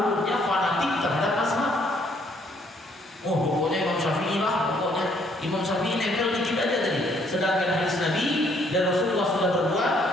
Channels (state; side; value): normal; both; correlation 0.66